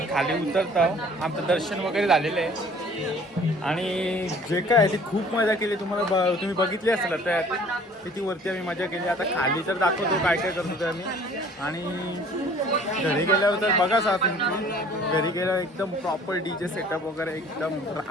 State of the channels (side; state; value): both; normal; correlation 0.52